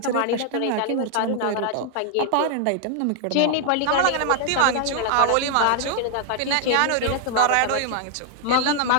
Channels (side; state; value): both; different; correlation 0.00